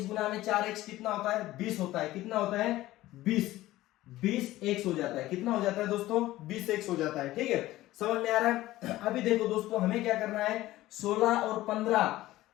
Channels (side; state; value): right; quieter; 16.3 dB